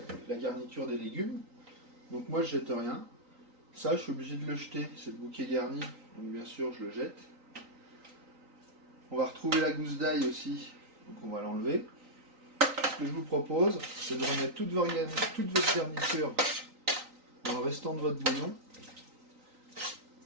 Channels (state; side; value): late; left; 3.9 ms